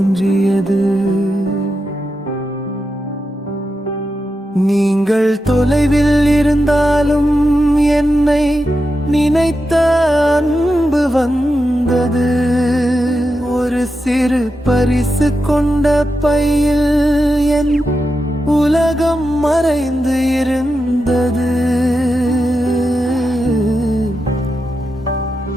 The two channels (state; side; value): normal; both; correlation 0.88